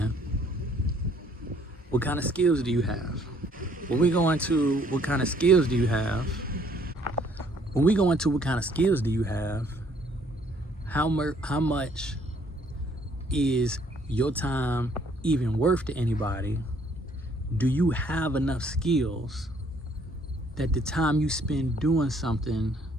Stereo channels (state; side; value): normal; both; correlation 0.63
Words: what kind of skills do you have? When we go into what kind of skills do you have, how much is your time even worth to anybody? Do you have enough skills that the time you spend doing something,